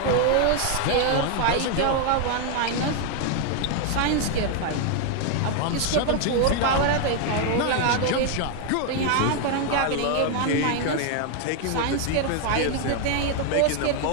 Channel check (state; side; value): different; both; correlation 0.01